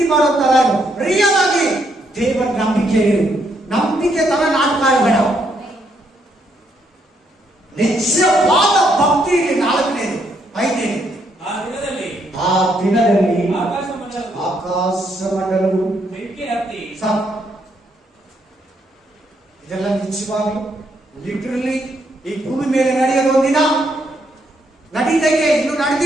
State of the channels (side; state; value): both; normal; correlation 0.74